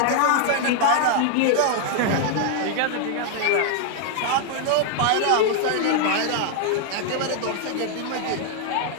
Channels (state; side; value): different; both; correlation 0.00